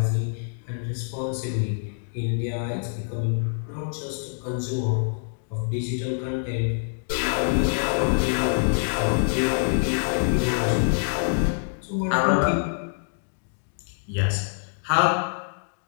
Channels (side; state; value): right; silent; digital silence